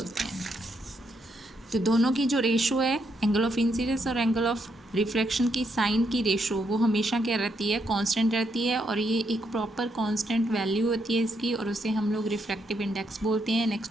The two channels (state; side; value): normal; both; correlation 0.77